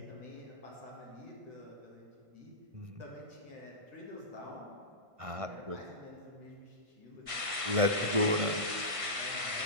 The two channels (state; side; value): late; left; 1.5 ms